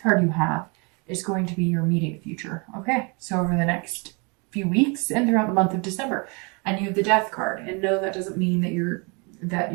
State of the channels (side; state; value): left; quieter; 32.0 dB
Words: card you have is going to be your immediate future. Okay, so over the next few weeks and throughout the month of December. And you have the Death card. And no, that doesn't mean that